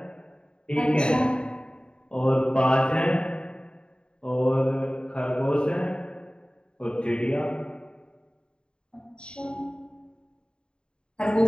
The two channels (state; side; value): late; right; 0.051 ms